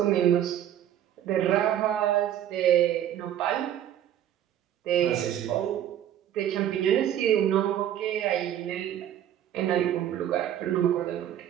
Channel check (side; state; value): left; quieter; 10.9 dB